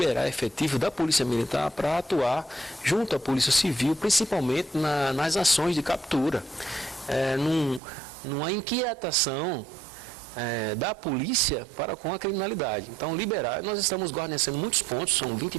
efetivo da Polícia Militar para atuar junto à Polícia Civil, principalmente nas ações de captura. Numa inquietação da polícia para com a criminalidade. Então, liberar, nós estamos guarnecendo muitos pontos, são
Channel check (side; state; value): left; drops out; at 7.8 s